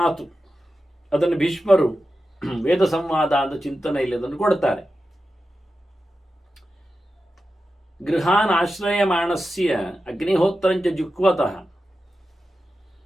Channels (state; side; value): normal; both; correlation 0.91